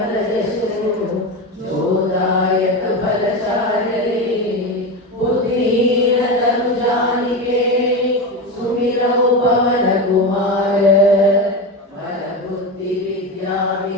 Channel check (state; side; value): normal; both; correlation 0.19